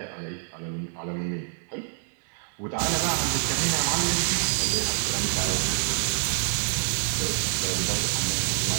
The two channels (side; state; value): left; silent; 60 dB below the other